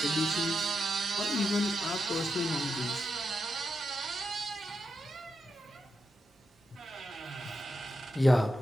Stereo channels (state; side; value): normal; both; correlation 0.86